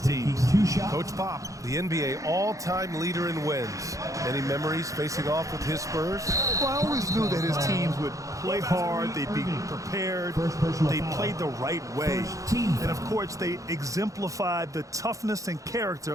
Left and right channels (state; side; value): late; left; 0.16 ms